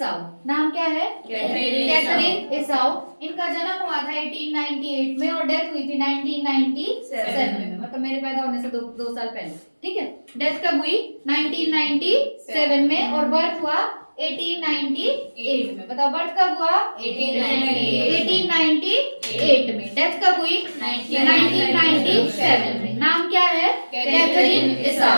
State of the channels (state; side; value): inverted; both; correlation -1.00